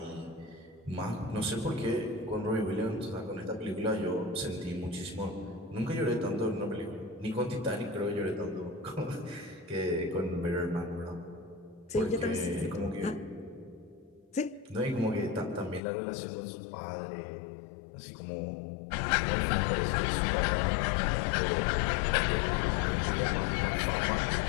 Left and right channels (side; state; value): right; drops out; at 15.8 s